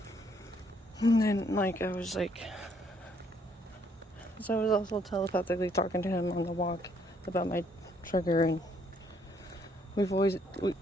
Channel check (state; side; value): normal; both; correlation 0.68